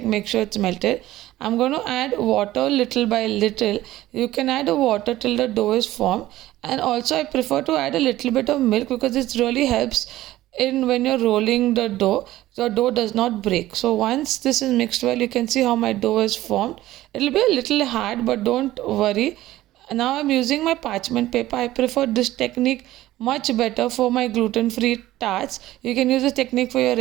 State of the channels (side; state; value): left; quieter; 15.5 dB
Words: Make sure it's melted. I'm going to add water little by little. You can add a water till the dough is formed, and also I prefer to add a little bit of milk because it really helps in when you're rolling the dough. The dough does not break. So once this is mixed well, you can see how my dough is formed. It'll be a little hard, but don't worry. Now I'm using my parchment paper. I prefer this technique much better for my gluten-free tarts. You can use this technique for your